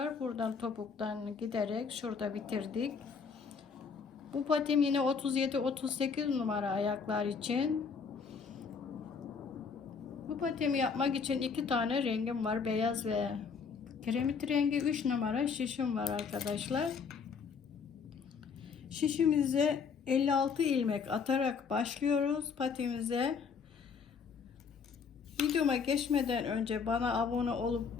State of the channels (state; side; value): quieter; right; 5.8 dB